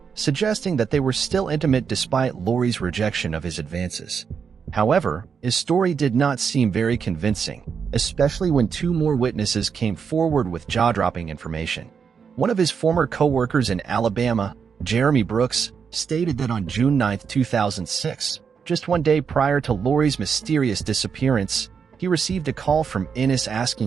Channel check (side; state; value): left; quieter; 6.4 dB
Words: suggesting that they were still intimate despite Lori's rejection of his advances. However, his story did not seem very convincing, especially when 2 more witnesses came forward with jaw-dropping information. One of his former co-workers in Alabama, Jeremy Brooks, stated that on June 9, 2006, just 1 day prior to Lori's mysterious disappearance, he received a call from Ennis